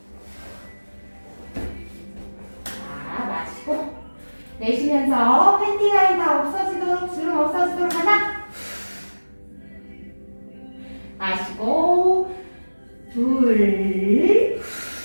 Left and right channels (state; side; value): inverted; both; correlation -1.00